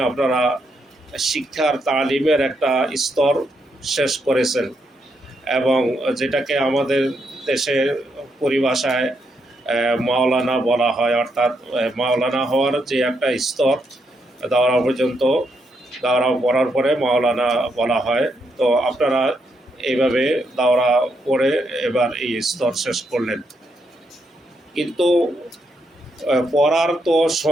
আপনারা শিক্ষার তালিমের একটা স্তর শেষ করেছেন, এবং যেটাকে আমাদের দেশের পরিভাষায় মাওলানা বলা হয়, অর্থাৎ মাওলানা হওয়ার যে একটা স্তর, দাওরা পর্যন্ত, দাওরা পড়ার পরে মাওলানা বলা হয়। তো আপনারা এইভাবে দাওরা পড়ে এবার এই স্তর শেষ করলেন, কিন্তু পড়ার তো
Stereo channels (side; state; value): both; normal; correlation 0.79